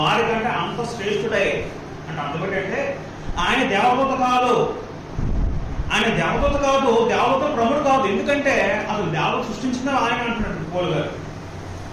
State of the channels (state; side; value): identical; both; correlation 1.00